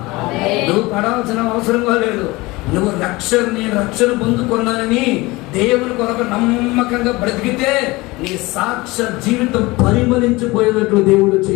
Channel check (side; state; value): right; quieter; 21.9 dB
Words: నువ్వు పడాల్సిన అవసరంగా లేదు. నువ్వు నేను రక్షణ పొందుకున్నానని దేవుని కొరకు నమ్మకంగా బ్రతికితే నీ సాక్ష్య జీవితం పరిమళించిపోయేటట్లు దేవుడు